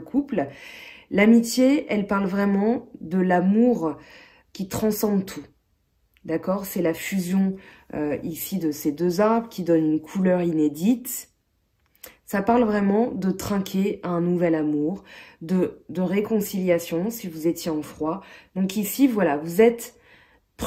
L'amitié, elle parle vraiment de l'amour qui transcende tout. D'accord? C'est la fusion ici de ces deux arbres qui donne une couleur inédite. Ça parle vraiment de trinquer à un nouvel amour, de réconciliation si vous étiez en froid. Donc ici, voilà, vous êtes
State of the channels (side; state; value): both; identical; correlation 1.00